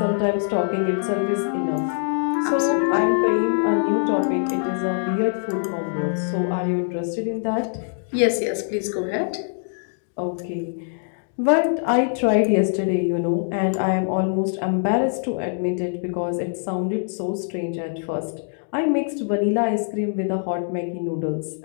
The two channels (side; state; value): right; silent; digital silence